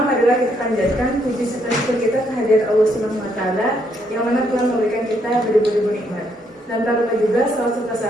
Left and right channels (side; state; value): both; normal; correlation 0.73